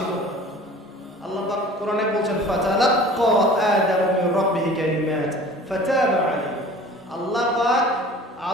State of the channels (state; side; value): normal; both; correlation 0.45